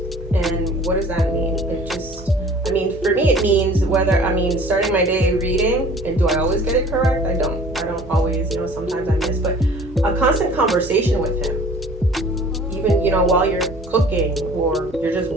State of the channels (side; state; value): both; normal; correlation 0.49